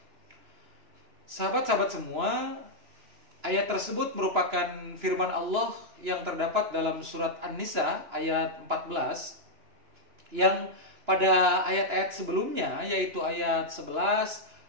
Sahabat-sahabat semua, ayat tersebut merupakan firman Allah yang terdapat dalam surat An-Nisa ayat 14, yang pada ayat-ayat sebelumnya, yaitu ayat 11,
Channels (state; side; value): late; left; 2.9 ms